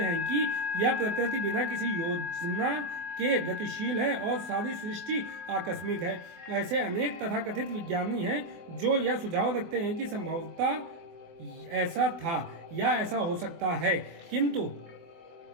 कि यह प्रकृति बिना किसी योजना के गतिशील है और सारी सृष्टि आकस्मिक है। ऐसे अनेक तथाकथित विज्ञानी हैं जो यह सुझाव रखते हैं कि संभवतः ऐसा था या ऐसा हो सकता है, किंतु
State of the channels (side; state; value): left; late; 24 ms